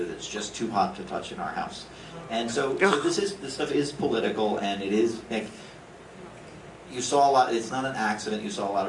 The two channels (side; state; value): both; identical; correlation 1.00